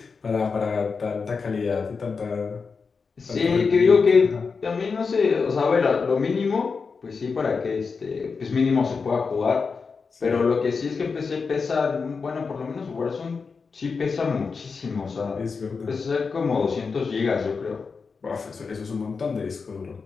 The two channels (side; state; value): right; quieter; 5.0 dB